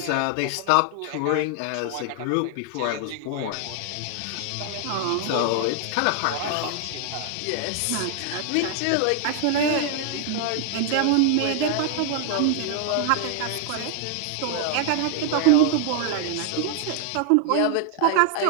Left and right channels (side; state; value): both; different; correlation 0.00